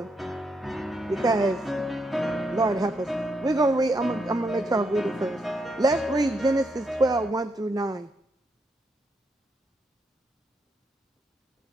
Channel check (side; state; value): both; normal; correlation 0.78